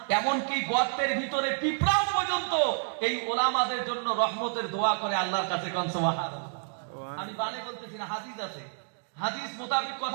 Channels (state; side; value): silent; left; digital silence